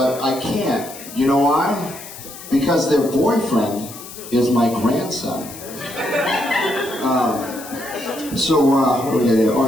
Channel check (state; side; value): noise; left; hiss, 14 dB below the sound